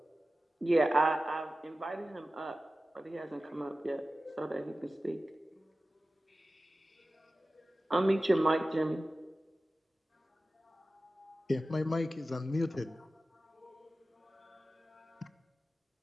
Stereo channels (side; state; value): both; normal; correlation 0.95